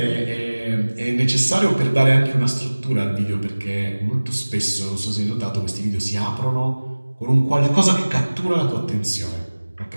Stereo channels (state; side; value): inverted; both; correlation -1.00